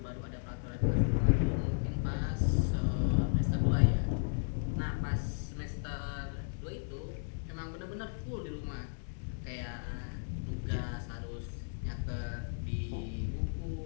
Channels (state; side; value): silent; right; digital silence